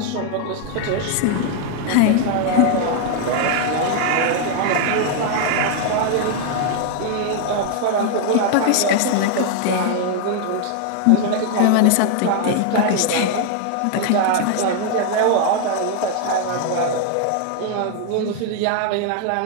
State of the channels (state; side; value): different; both; correlation 0.00